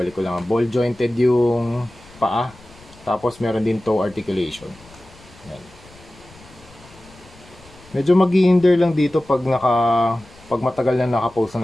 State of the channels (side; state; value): left; noise; rumble, 24 dB below the sound